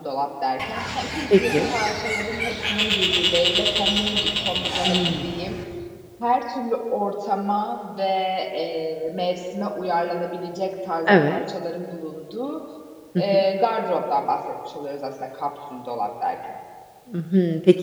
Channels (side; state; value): both; identical; correlation 1.00